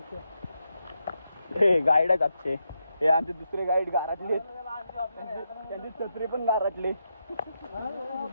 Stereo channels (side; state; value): both; inverted; correlation -0.84